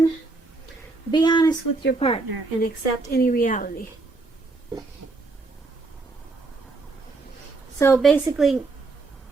be honest with your partner and accept any reality. So basically,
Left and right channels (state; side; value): quieter; left; 3.6 dB